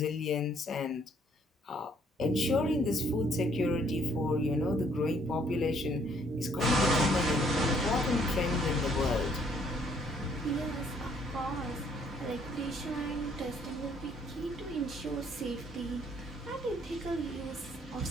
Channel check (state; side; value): normal; both; correlation 0.65